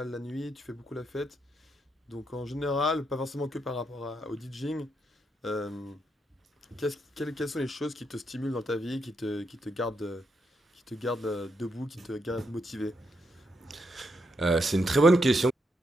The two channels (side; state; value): both; normal; correlation 0.80